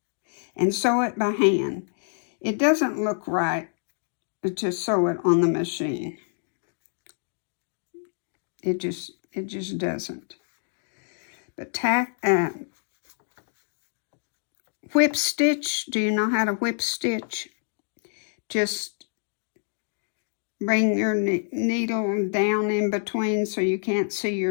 And sew it by hand. It doesn't look right to sew it on the machine. It just doesn't. But whip stitch. Do you know how to whip stitch? Just bring your needle down in between so you can't see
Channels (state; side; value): silent; right; digital silence